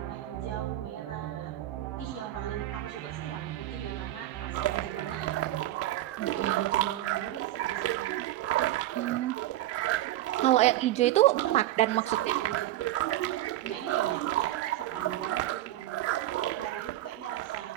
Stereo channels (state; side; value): quieter; left; 14.6 dB